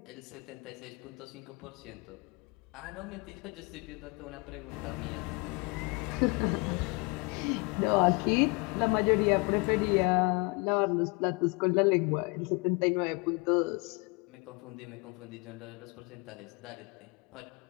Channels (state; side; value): quieter; right; 29.9 dB